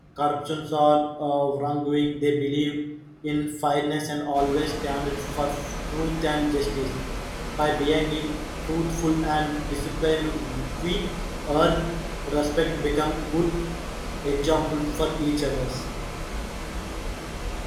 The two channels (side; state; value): both; identical; correlation 1.00